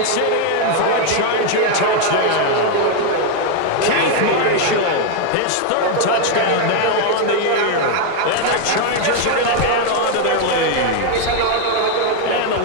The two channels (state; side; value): different; both; correlation 0.01